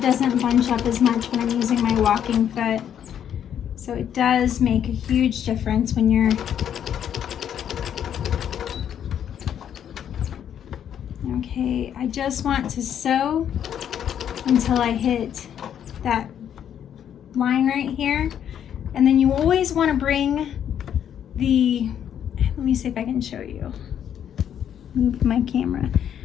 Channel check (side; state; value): right; quieter; 9.4 dB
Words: doesn't bunch up as much when I'm using my walking foot. So it does make a huge difference when you're okay. I just want to sew until I hit that line right here, and then you always want to bring the, let me see if I can show you, move my camera,